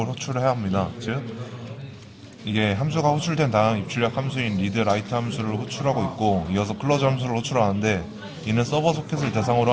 호출해야 합니다. 즉 이게 함수가 호출된 다음 입출력 함수인 read, write 함수를 호출하고 있고, 이어서 close 함수를 호출하는데, 이는 서버 소켓을 대상으로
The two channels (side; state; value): both; identical; correlation 1.00